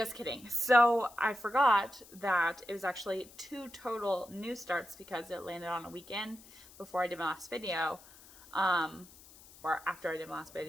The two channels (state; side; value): noise; left; hiss, 22 dB below the sound